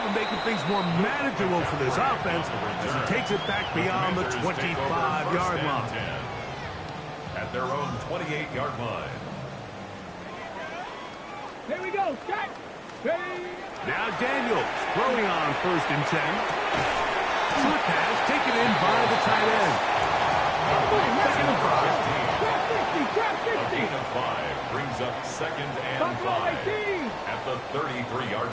of making things more manageable for this offense as he takes it back beyond the 25-yard line. At their own 28-yard line. Here we go. Set. Ready. Now Daniels throwing on first and 10. Short pass taken in by the tight end. Second and 5. A gain of 5 brings up second and 5 at the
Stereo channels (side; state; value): both; identical; correlation 1.00